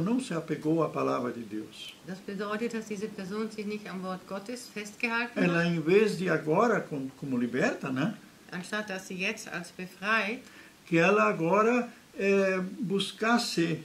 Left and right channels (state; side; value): identical; both; correlation 1.00